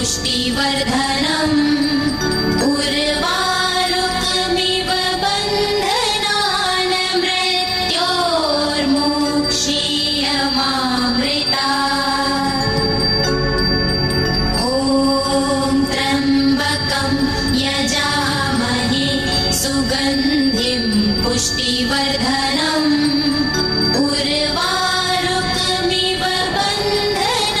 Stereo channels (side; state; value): both; identical; correlation 1.00